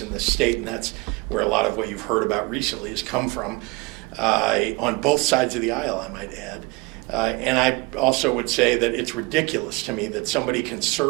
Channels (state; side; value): quieter; left; 26.0 dB